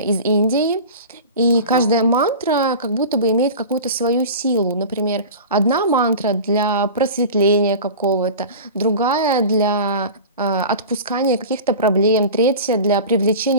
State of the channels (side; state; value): both; inverted; correlation -0.34